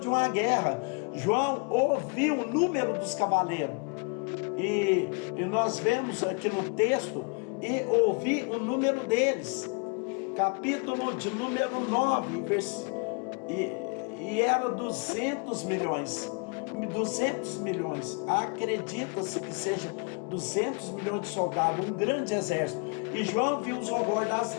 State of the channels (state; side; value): quieter; right; 35.2 dB